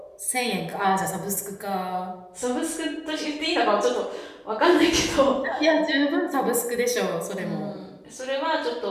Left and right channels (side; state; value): both; identical; correlation 1.00